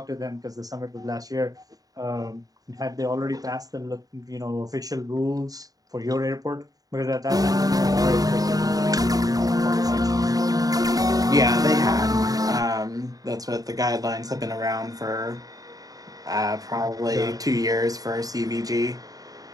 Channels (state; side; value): late; left; 0.18 ms